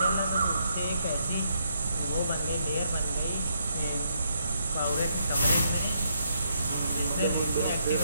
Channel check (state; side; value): inverted; both; correlation -0.76